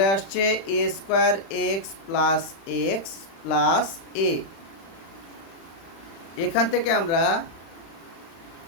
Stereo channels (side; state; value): right; late; 36 ms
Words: আসছে A square X plus X plus A. এখান থেকে আমরা